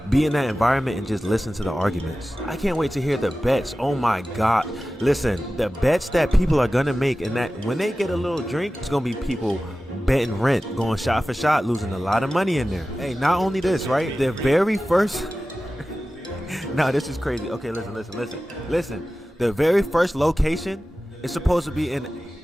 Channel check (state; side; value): normal; both; correlation 0.95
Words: be in that environment and just listen to the arguments. I can't wait to hear the bets. Oh my God. Listen, the bets that people are gonna make, and that when they get a little drink, it's gonna be people betting rent, going shot for shot, losing a lot of money in there. Hey, not only this, right? The very first no, this is crazy. Okay, listen. The very first location is supposed to be in